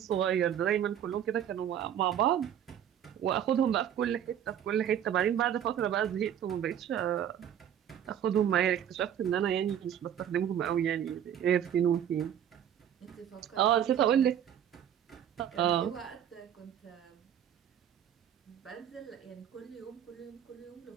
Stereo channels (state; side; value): quieter; left; 9.8 dB